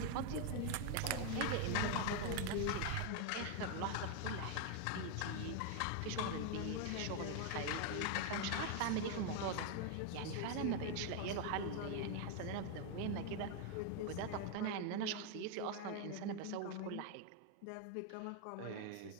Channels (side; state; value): both; different; correlation 0.01